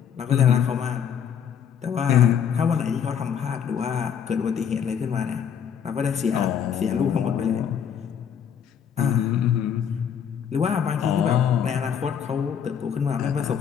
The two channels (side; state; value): right; quieter; 8.1 dB